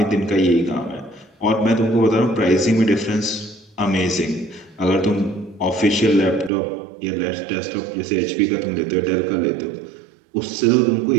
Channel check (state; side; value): drops out; left; at 6.5 s